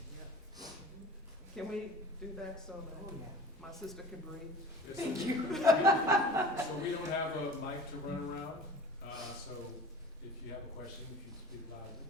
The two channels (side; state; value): both; normal; correlation 0.41